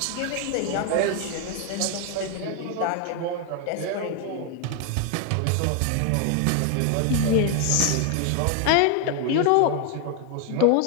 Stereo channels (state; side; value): different; both; correlation 0.01